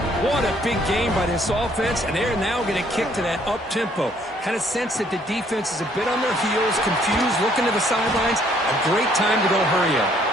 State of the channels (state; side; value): normal; both; correlation 0.64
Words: What a big game by this offense, and they're now going to kick to that up-tempo. Kind of sense that the defense is a bit on their heels, confused, looking to the sidelines. A great time to go hurry up.